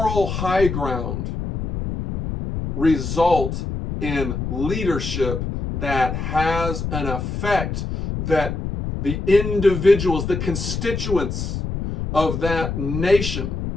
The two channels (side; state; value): left; noise; rumble, 4 dB below the sound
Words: high ground result in leadership that has an effect that the individuals, the constituents of that nation